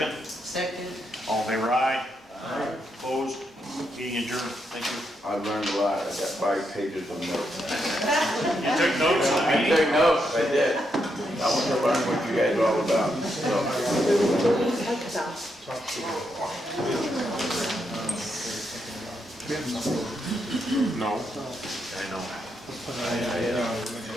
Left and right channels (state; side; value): normal; both; correlation 0.81